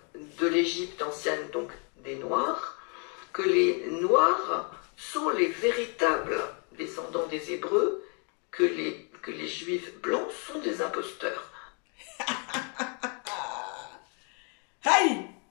de l'Égypte ancienne, donc des Noirs, que les Noirs sont les véritables descendants des Hébreux, que les Juifs blancs sont des imposteurs. Hey,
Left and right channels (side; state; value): right; quieter; 37.8 dB